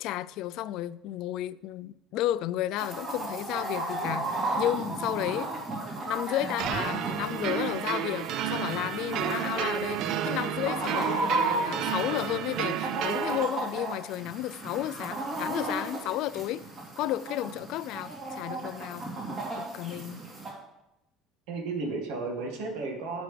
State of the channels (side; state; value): both; normal; correlation 0.35